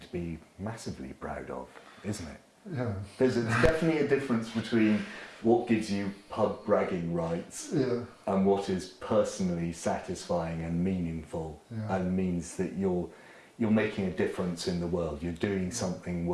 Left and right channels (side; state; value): both; identical; correlation 1.00